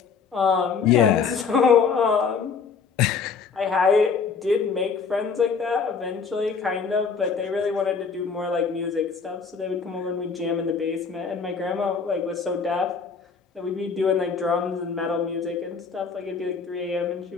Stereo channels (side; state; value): right; quieter; 5.5 dB